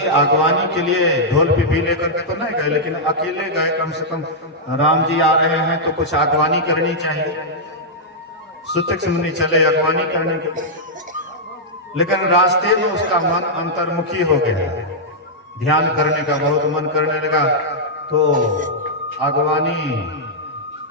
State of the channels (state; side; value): normal; both; correlation -0.08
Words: आगवानी के लिए ढोल पिपी लेकर के तो नहीं गए, लेकिन अकेले गए। कम से कम राम जी आ रहे हैं तो कुछ आगवानी करनी चाहिए। सुतिक्ष मुनि चले अगवानी करने के लिए, लेकिन रास्ते में उसका मन अंतर्मुखी हो गया, ध्यान करने का बहुत मन करने लगा। तो अगवानी